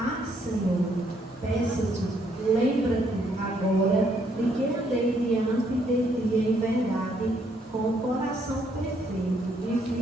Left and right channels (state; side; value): normal; both; correlation 0.71